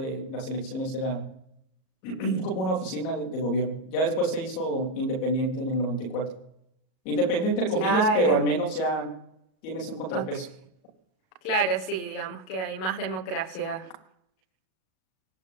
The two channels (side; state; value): right; late; 38 ms